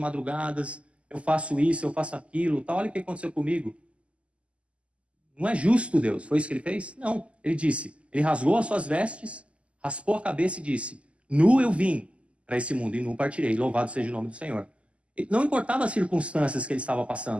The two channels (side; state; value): left; late; 0.059 ms